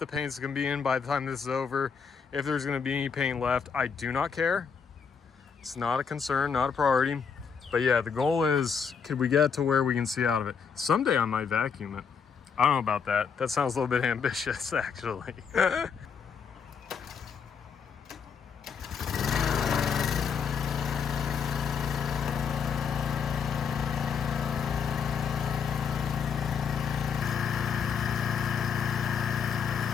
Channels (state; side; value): quieter; right; 6.4 dB